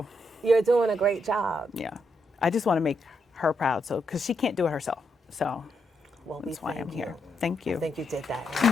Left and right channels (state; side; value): normal; both; correlation 0.80